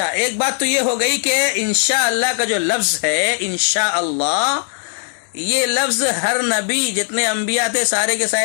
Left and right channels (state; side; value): silent; right; digital silence